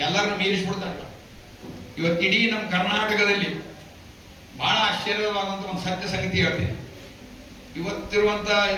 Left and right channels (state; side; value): identical; both; correlation 1.00